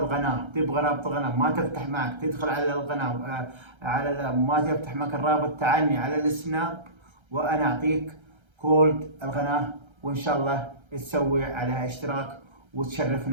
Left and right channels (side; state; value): left; late; 1.3 ms